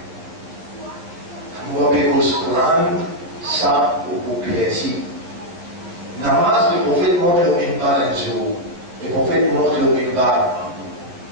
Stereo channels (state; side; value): late; left; 12 ms